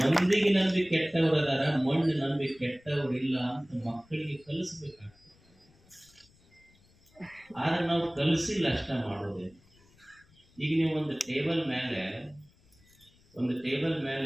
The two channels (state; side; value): noise; left; rumble, 30 dB below the sound